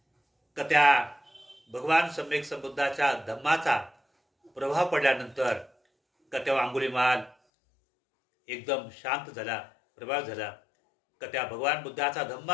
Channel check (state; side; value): drops out; right; at 7.4 s